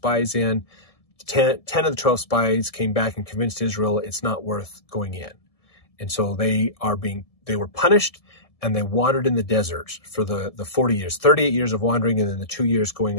in. 10 of the 12 spies came back and convinced Israel it's not worth going in. And so they were punished, and they wandered in the desert for the 40 years, 38 years of wandering, and then the 2 years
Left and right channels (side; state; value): right; late; 1.7 ms